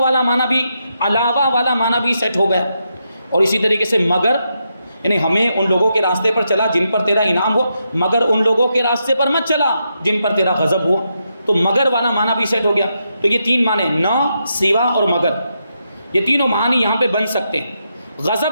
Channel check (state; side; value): inverted; both; correlation -0.83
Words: معنی بھی, علاوہ والا معنی بھی سیٹ ہو گیا. اور اسی طریقے سے مگر, یعنی ہمیں ان لوگوں کے راستے پر چلا جن پر تیرا انعام ہوا, مگر ان لوگوں کے راستے پر مت چلا جن پر تیرا غضب ہوا. تو مگر والا معنی بھی سیٹ ہو گیا. تو یہ 3 معنی, نہ, سوا اور مگر, یہ تینوں معنی یہاں پہ بن سکتے ہیں.